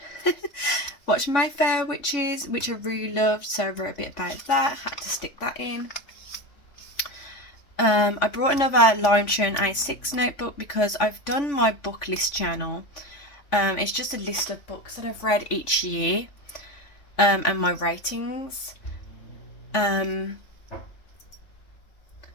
watch My Fair Witches, which I really loved. So I wrote a bit about that. Had to stick that in. I brought another Hobonichi A6 notebook because I've done my book list journal. It's just a list of books that I've read each year, and my ratings. But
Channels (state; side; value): late; right; 3.5 ms